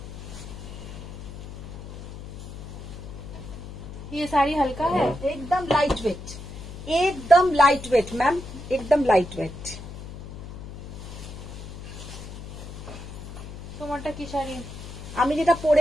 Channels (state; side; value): noise; left; hum, 12 dB below the sound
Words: ये साड़ी हल्का है, एकदम लाइट वेट, एकदम लाइट वेट मैम, एकदम लाइट वेट। তোমারটা কি শাড়ি? আমি যেটা